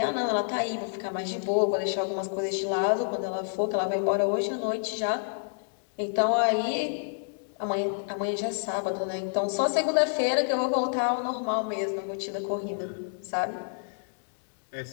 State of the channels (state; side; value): silent; right; digital silence